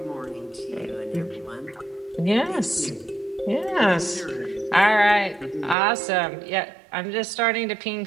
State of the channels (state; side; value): drops out; left; at 5.8 s